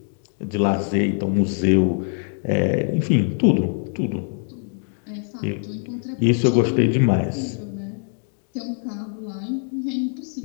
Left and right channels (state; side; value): silent; right; 55 dB below the other